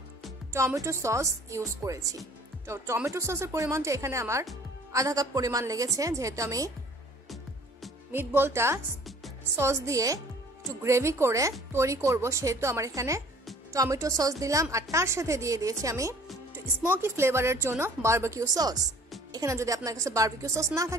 টমেটো সস ইউজ করেছি। তো টমেটো সসের পরিমাণটা এখানে আমার আধা কাপ পরিমাণ লেগেছে, যেহেতু আমি মিটবলটা সস দিয়ে একটু গ্রেভি করে তৈরি করব সেহেতু আমার এখানে টমেটো সস দিলাম। আর তার সাথে দিয়ে দিয়েছি আমি একটু স্মোকি ফ্লেভারের জন্য বারবিকিউ সস। এখানে যদি আপনার কাছে বারবিকিউ সস না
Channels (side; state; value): both; normal; correlation 0.52